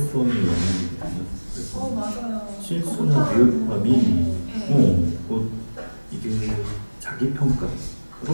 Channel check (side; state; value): both; inverted; correlation -1.00